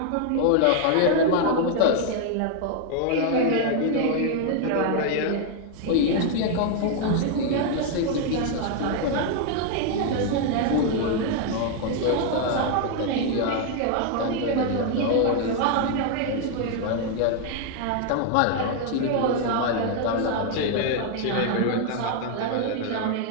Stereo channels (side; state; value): both; different; correlation 0.00